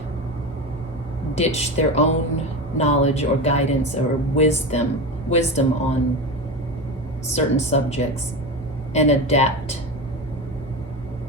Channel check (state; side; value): normal; both; correlation 0.24